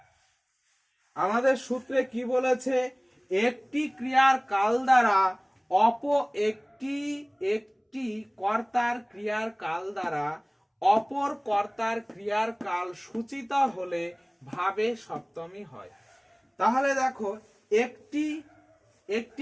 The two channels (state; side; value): identical; both; correlation 1.00